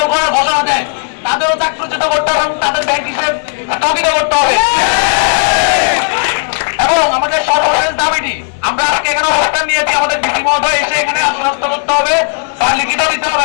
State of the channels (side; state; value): right; silent; digital silence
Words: করার ঘোষণা দেয়, তাদেরও চাকরচ্যুত করতে হবে এবং তাদের ব্যাংক হিসেবে স্থগিত করতে হবে। এবং আমাদের সর্বশেষ দাবিটি, আমরা আজকে এখানে অবস্থান নিয়েছি, আমাদের ডিসি মহোদয় এসে এখানে আশ্বস্ত করতে হবে বা লিখিত দিতে